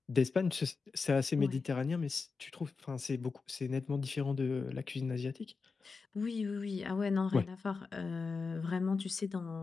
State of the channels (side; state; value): right; quieter; 4.6 dB